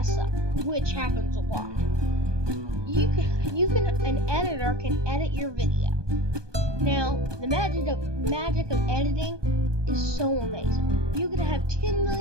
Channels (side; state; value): left; late; 1.2 ms